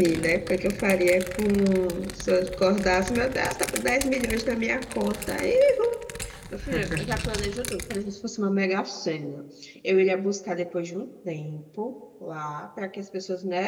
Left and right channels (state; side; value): identical; both; correlation 1.00